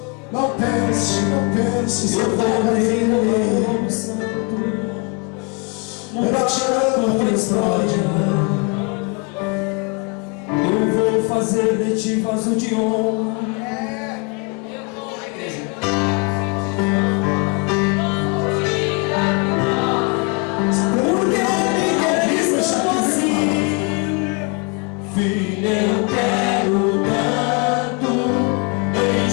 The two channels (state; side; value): quieter; right; 31.8 dB